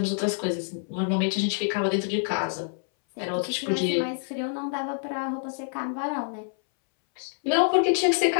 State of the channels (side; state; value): right; silent; 60 dB below the other